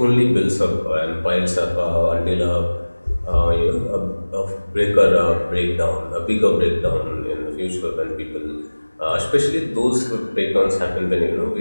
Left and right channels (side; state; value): both; inverted; correlation -1.00